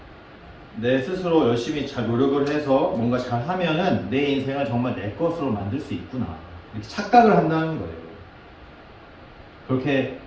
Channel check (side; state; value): both; identical; correlation 1.00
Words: 내 스스로 열심히 잘 노력을 해서 뭔가 잘 하면은 내 인생을 정말 내 것으로 만들 수 있구나. 이렇게 착각을 한다는 거예요. 그렇게